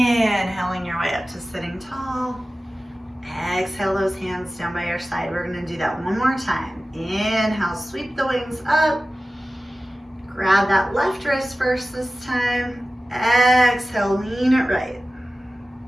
your way up to sitting tall. Exhale those hands down by your side. We're going to do that one more time. Inhale, sweep the wings up. Grab that left wrist first this time. Exhale, lean it right.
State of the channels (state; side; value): normal; both; correlation 0.96